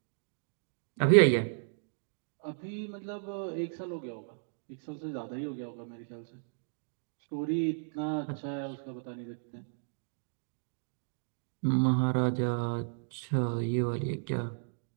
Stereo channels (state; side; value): silent; left; digital silence